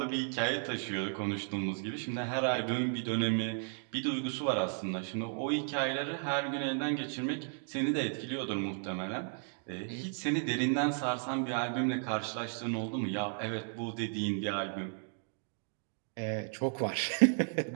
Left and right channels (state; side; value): silent; left; 55 dB below the other